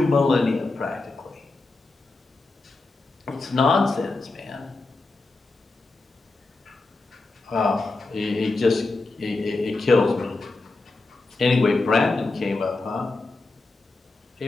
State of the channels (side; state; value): right; quieter; 3.4 dB